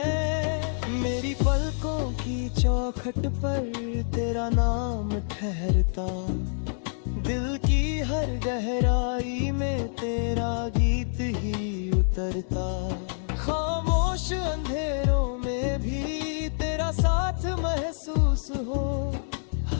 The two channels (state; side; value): silent; right; 60 dB below the other